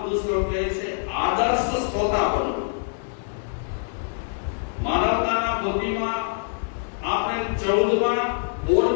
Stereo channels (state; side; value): silent; right; 62 dB below the other